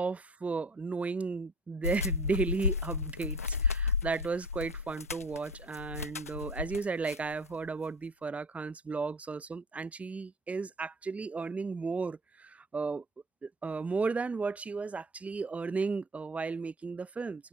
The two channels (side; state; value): both; normal; correlation 0.39